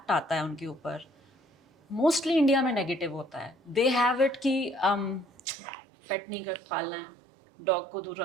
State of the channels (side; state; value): left; drops out; at 5.2 s